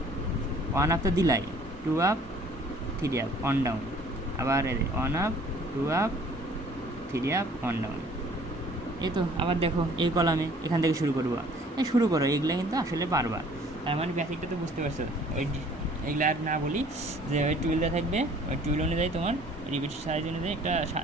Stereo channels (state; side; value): normal; both; correlation 0.54